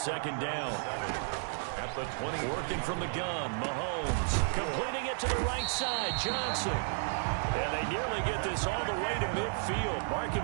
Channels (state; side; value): silent; left; digital silence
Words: down. At the 20. Working from the gun, Mahomes. Completing it to the right side, Johnson. And they nearly get this all the way to midfield. Mark